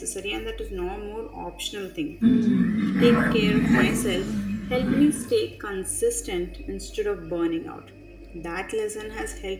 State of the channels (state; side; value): identical; both; correlation 1.00